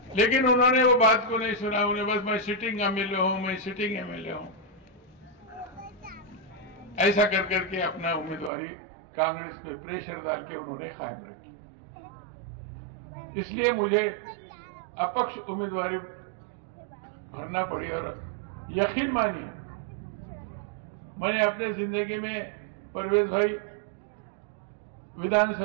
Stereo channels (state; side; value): drops out; left; at 8.5 s